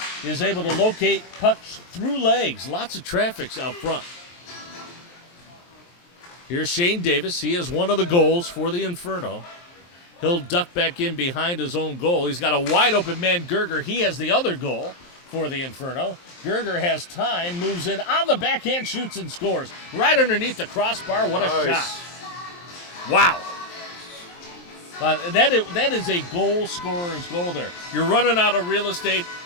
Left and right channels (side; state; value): right; late; 23 ms